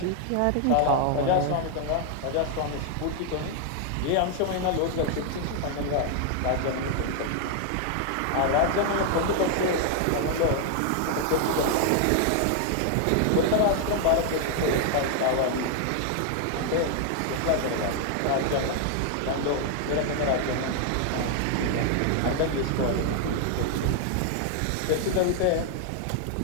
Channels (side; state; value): both; different; correlation 0.00